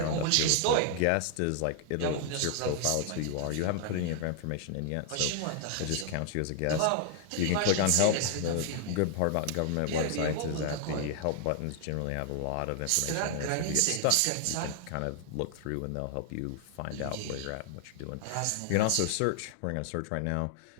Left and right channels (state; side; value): different; both; correlation 0.00